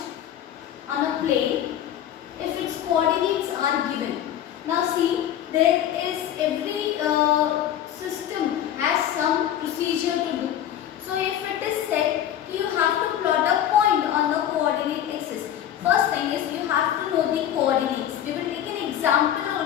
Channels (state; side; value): quieter; right; 10.8 dB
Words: on a plane if its coordinates are given. Now see, there is every system has some procedure to do. So if it is said you have to plot a point on the coordinate axis, first thing is you have to know the coordinates. We will take an example